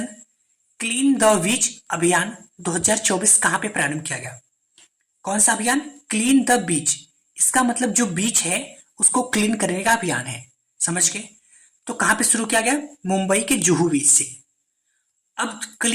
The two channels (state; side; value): identical; both; correlation 1.00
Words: clean the beach अभियान 2024 कहां पे प्रारंभ किया गया? कौन सा अभियान? Clean the beach. इसका मतलब जो बीच है उसको क्लीन करने का अभियान है। समझ गए? तो कहां पे शुरू किया गया? मुंबई के जुहू बीच से। अब